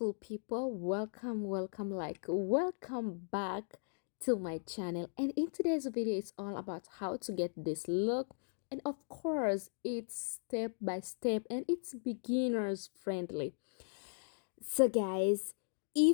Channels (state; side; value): silent; right; digital silence